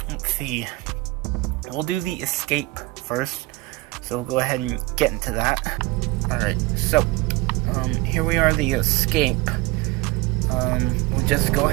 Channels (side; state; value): left; quieter; 21.0 dB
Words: let's see. We'll do the escape first. So we'll go ahead and get into that. Alright, so here we are, the escape. We'll just go